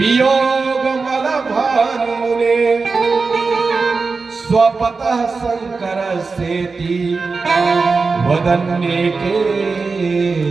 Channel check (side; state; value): left; quieter; 4.3 dB